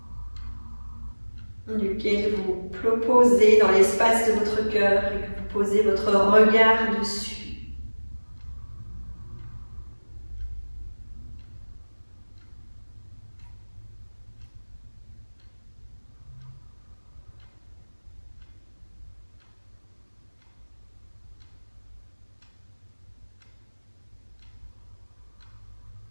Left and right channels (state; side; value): inverted; both; correlation -1.00